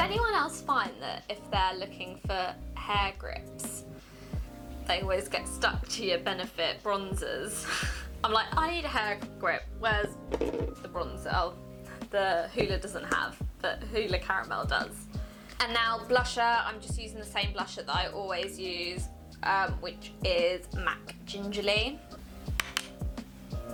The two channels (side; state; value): both; identical; correlation 1.00